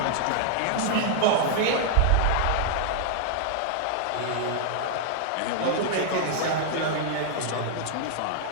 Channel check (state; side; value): different; both; correlation -0.01